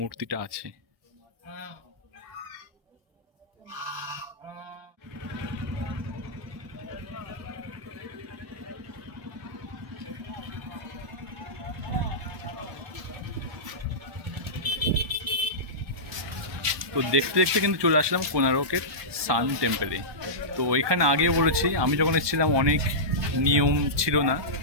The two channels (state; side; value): late; left; 1.2 ms